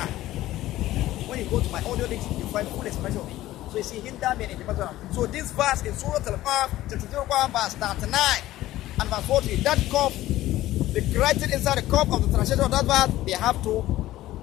When you go to my audio links, you find full expression of it. So you see Hinder in the Masjid Haram. So this verse in Surah Al-Qaf, chapter 01, verse 39 and verse 40, that COVE, the corrected inside the COVE of the translation of that verse, they have to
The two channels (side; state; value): right; quieter; 15.4 dB